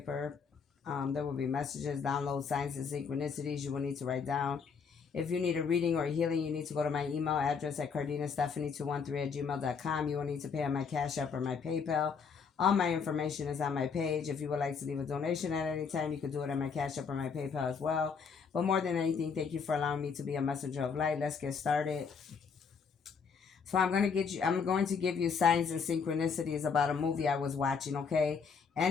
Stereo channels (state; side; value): quieter; right; 5.9 dB